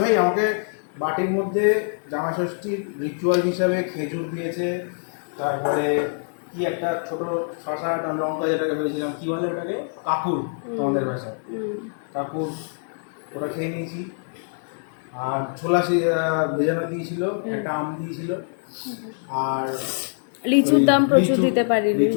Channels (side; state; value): right; silent; digital silence